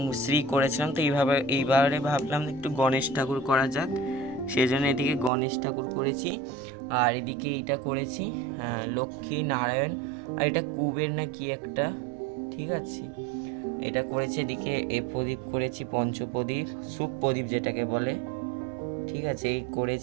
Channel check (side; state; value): left; drops out; at 5.3 s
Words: শ্রী করেছিলাম। তো এইবারে ভাবলাম একটু গণেশ ঠাকুর করা যাক, সেই জন্য এদিকে গণেশ ঠাকুর করেছি। আর এদিকে এইটা করেছি লক্ষ্মী নারায়ণ, আর এটা কুবের না কি একটা, ঠিক আছে, এটা করেছি। এদিকে এ প্রদীপ করেছি, পঞ্চপ্রদীপ, সুখ প্রদীপ যেটাকে বলে, ঠিক আছে, এই